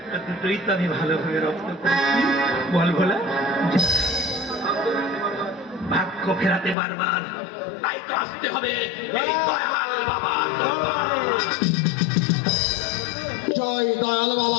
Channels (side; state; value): right; drops out; at 6.8 s